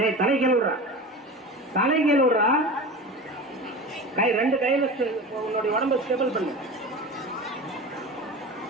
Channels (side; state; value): both; normal; correlation 0.31